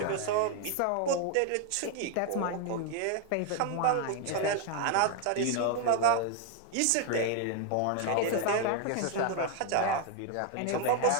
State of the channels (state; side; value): different; both; correlation 0.01